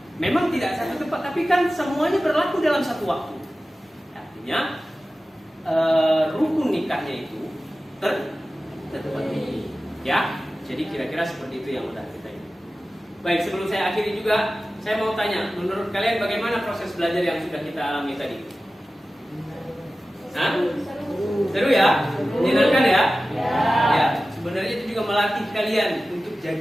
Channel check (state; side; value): normal; both; correlation 0.95